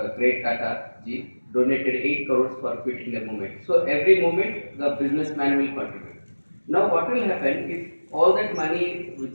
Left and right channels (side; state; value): both; inverted; correlation -1.00